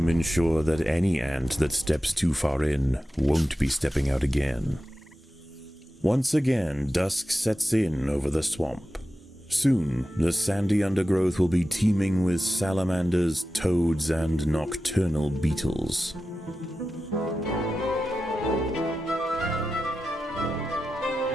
ensure that any ant that steps too far in won't be stepping out again. Once again, dusk sets in over the swamp. Soon, the sandy undergrowth will be teeming with salamanders, toads, and nocturnal beetles.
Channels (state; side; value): normal; both; correlation 0.93